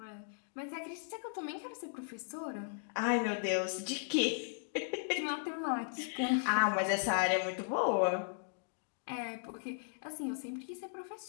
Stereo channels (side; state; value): right; silent; digital silence